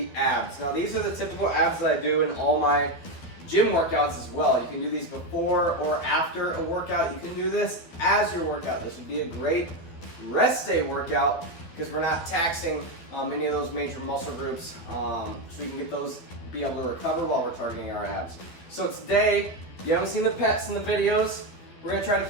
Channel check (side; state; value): right; late; 12 ms